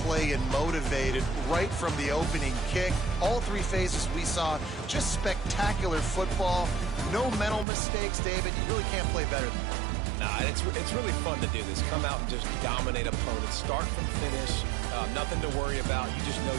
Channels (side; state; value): left; drops out; at 7.7 s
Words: play and motivated right from the opening kick. All 3 phases we saw, just spectacular football. No mental mistakes, David. You really can't play better than that. Nah, it's really fun to do this. Come out and just dominate opponents. Start from finish. Nothing to worry about. You just know